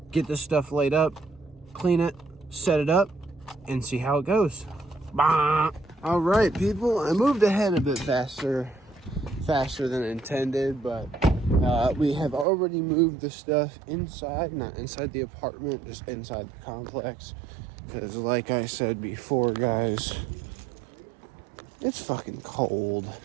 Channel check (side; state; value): left; drops out; at 12.5 s